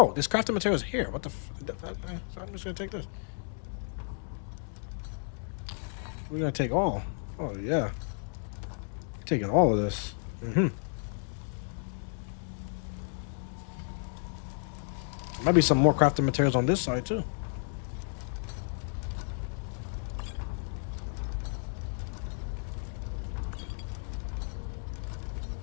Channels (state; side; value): silent; right; 56 dB below the other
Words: this crafting material is here. What the so I'm just gonna take this. We're gonna take all. Oh yeah. Taking all of this. Might be some more crafting materials on this side too.